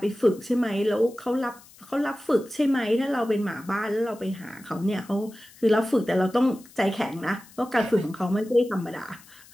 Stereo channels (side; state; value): left; noise; hiss, 24 dB below the sound